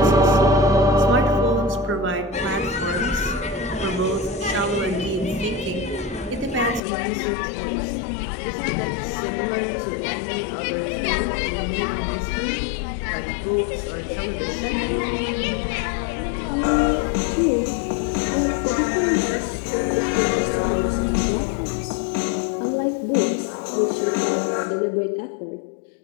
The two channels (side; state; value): right; drops out; at 6.8 s